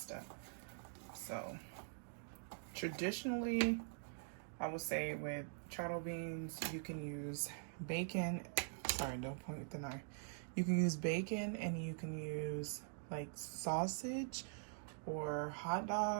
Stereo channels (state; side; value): silent; left; digital silence